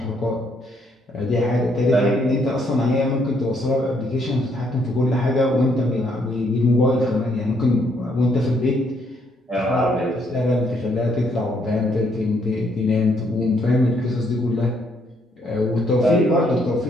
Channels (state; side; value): normal; both; correlation 0.71